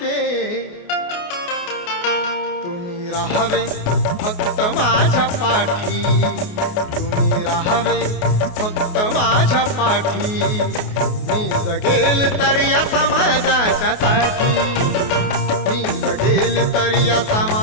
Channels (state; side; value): late; right; 28 ms